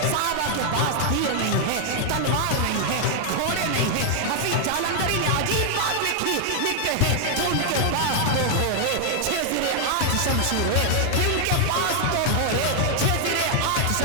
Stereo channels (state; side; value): different; both; correlation 0.00